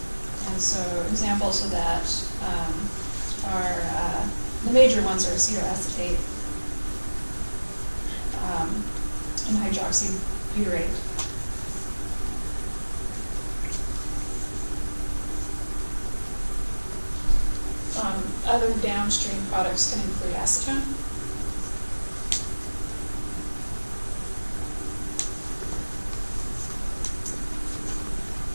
And so examples of that are, the major ones are acetoacetate and hydroxybutyrate. Other downstream products can include acetone.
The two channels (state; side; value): inverted; both; correlation -1.00